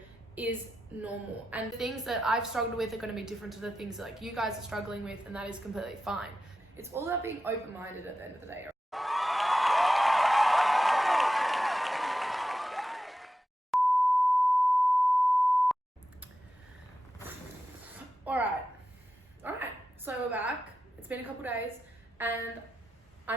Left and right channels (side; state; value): both; normal; correlation 0.91